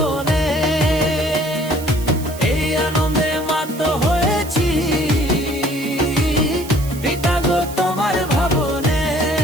এই আনন্দে মাত হয়েছি পিতা গো তোমার ভাবনে।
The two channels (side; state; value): right; noise; hiss, 15 dB below the sound